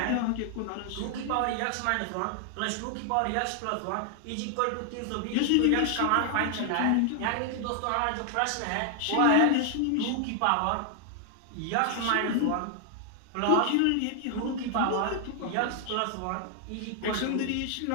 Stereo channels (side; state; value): both; different; correlation 0.00